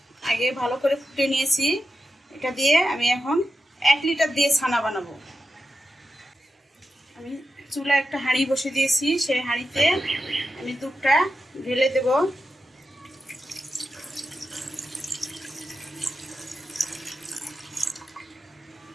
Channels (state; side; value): normal; both; correlation 0.89